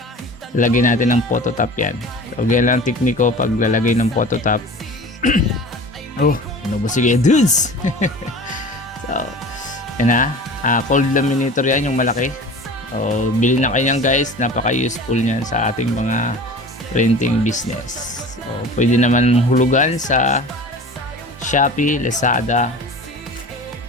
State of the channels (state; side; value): normal; both; correlation 0.39